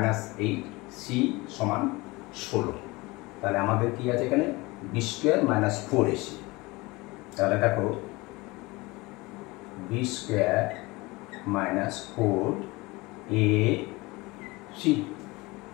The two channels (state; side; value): quieter; right; 22.9 dB